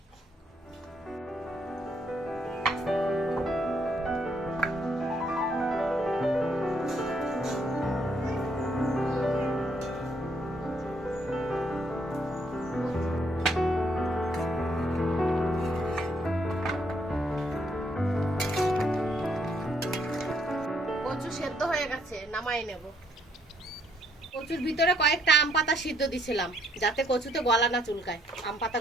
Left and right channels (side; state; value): both; normal; correlation 0.70